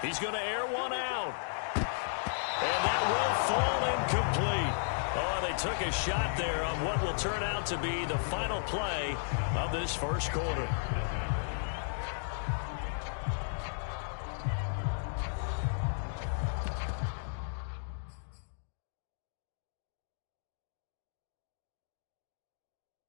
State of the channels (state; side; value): silent; right; digital silence